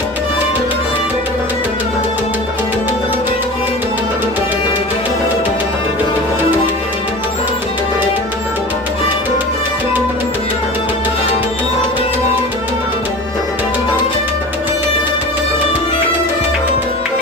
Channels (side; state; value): both; normal; correlation 0.34